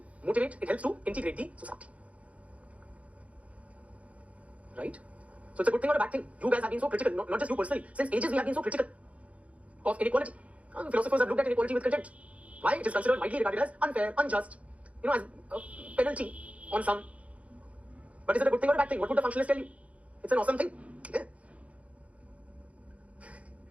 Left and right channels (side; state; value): left; late; 0.065 ms